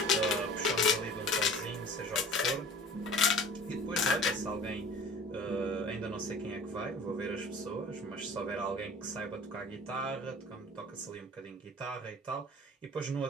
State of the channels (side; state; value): both; normal; correlation 0.44